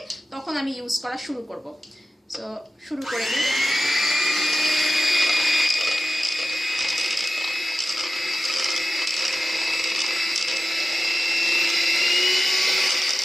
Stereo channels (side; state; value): both; normal; correlation 0.93